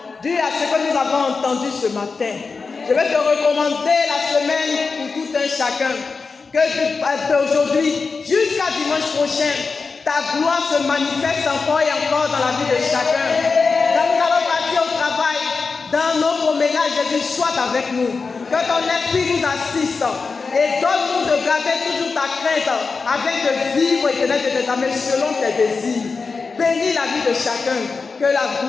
dues à ce que nous avons entendu ce matin. Je vais te recommander la semaine pour tout un chacun. Que d'aujourd'hui jusqu'à dimanche prochain, ta gloire se manifeste encore et encore dans la vie de chacun. Quand nous allons partir au travail, dans nos promenades, Jésus, sois avec nous. Que ton esprit nous assiste et donne-nous de garder toujours ta crainte afin de vivre et de tes amis selon tes désirs. Bénis la vie de chacun. Que la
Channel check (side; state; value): right; quieter; 4.6 dB